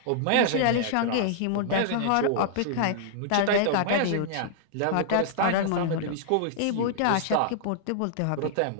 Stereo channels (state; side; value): different; both; correlation -0.01